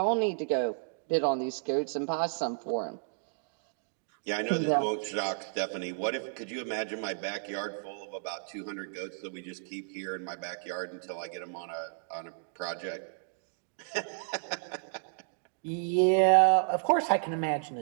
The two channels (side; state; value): left; silent; digital silence